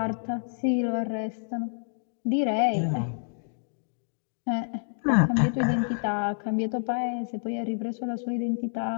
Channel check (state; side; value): silent; right; digital silence